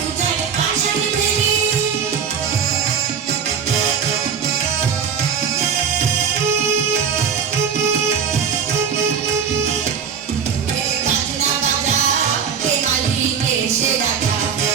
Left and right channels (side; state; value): left; quieter; 6.9 dB